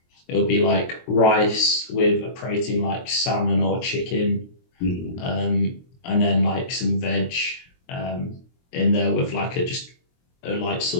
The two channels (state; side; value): late; right; 23 ms